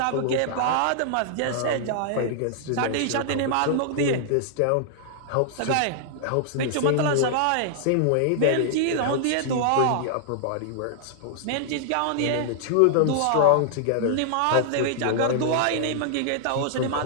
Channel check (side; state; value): both; different; correlation -0.01